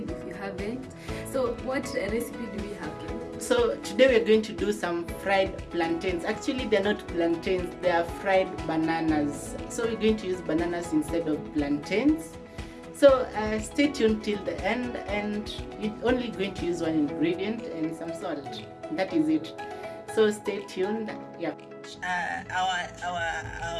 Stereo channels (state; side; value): identical; both; correlation 1.00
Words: if you haven't. So what recipe do we have, Ken? So today we're going to do some fried plantains. Actually they're not plantains, they are fried bananas. So we're going to use bananas instead of plantains. So stay tuned till the end, and you're only going to use one ingredient and some salt. That is it. So stay tuned. Yeah.